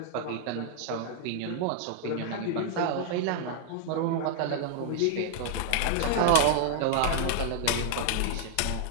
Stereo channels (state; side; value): different; both; correlation 0.00